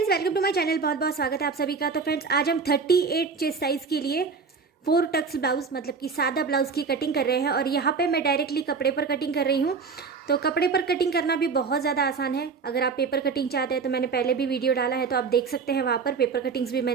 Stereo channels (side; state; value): left; quieter; 5.1 dB